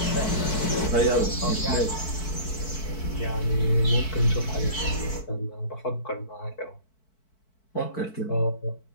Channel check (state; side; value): late; right; 4.6 ms